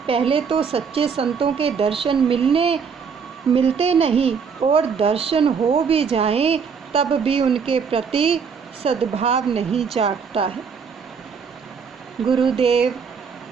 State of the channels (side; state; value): left; quieter; 6.2 dB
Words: पहले तो सच्चे संतों के दर्शन मिलते नहीं, और दर्शन हो भी जाएं तब भी उनके प्रति सद्भाव नहीं जागता है। गुरुदेव